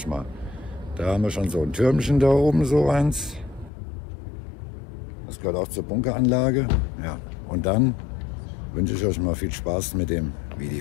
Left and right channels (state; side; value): drops out; right; at 3.7 s